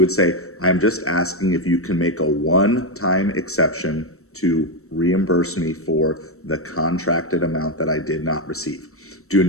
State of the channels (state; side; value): late; right; 0.63 ms